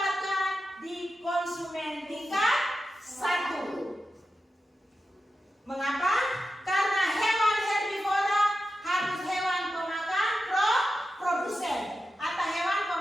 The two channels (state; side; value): normal; both; correlation 0.91